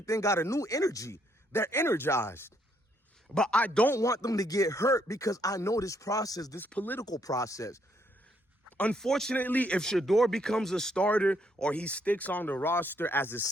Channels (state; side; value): normal; both; correlation 0.72